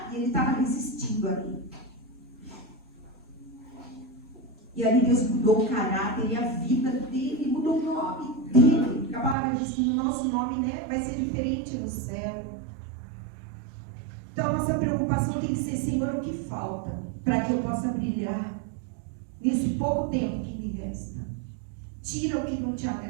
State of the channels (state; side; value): drops out; left; at 9.3 s